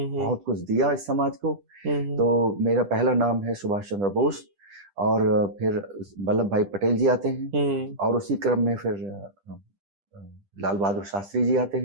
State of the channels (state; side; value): late; left; 10 ms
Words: कुछ दिया इस समाज को। तो मेरा पहला नाम है सुभाष चंद्र बोस, और फिर वल्लभ भाई पटेल जी आते हैं, और उसी क्रम में फिर लाल बहादुर शास्त्री जी आते